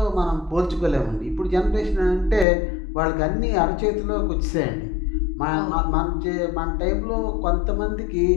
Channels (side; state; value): right; drops out; at 2.5 s